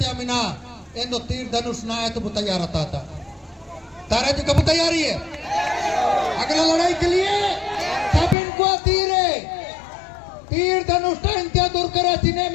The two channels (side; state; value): right; drops out; at 8.3 s